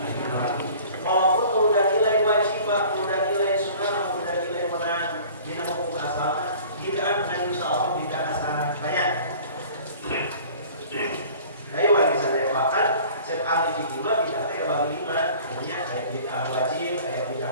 Walaupun udah nilai wajib, udah nilai sunnah, udah nilai menang dina hukum asal bid'ah dan insyaallah bid'ah hasanah banyak. Ayo misalnya bahkan setiap ahli fikih bid'ah teh bagi 5 namanya kayak bid'ah wajib, kayak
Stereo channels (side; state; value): both; inverted; correlation -0.47